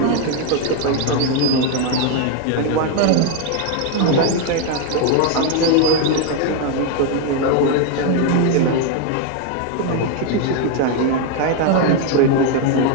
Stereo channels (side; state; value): both; different; correlation 0.01